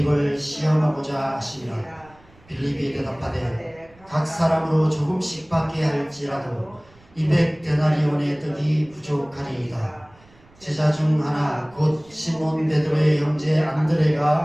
시험하고자 하시니라. 빌립이 대답하되 각 사람으로 조금씩 받게 할지라도 200데나리온의 떡이 부족하리이다. 제자 중 하나 곧 시몬 베드로의 형제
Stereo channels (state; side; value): noise; right; rumble, 28 dB below the sound